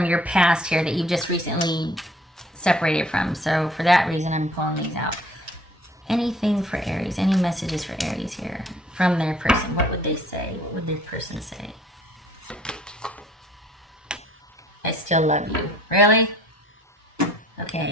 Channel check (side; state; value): both; normal; correlation 0.56